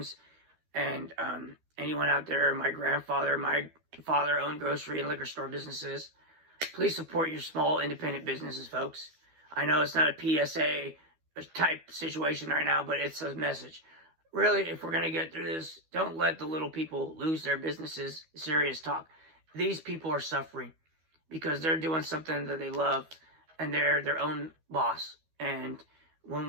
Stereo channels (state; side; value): late; left; 12 ms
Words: And anyone out there, my father owned grocery and liquor store businesses. Please support your small independent businesses, folks. I know it's not a PSA type situation right now, but it's a message. Really, if we're going to get through this, don't let the little people lose their businesses. Serious talk. These people are suffering because they're doing something that they love and they're their own boss. And when